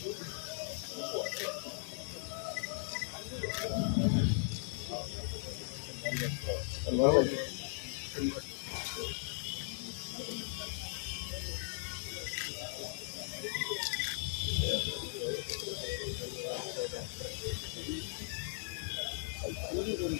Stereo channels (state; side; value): silent; right; 52 dB below the other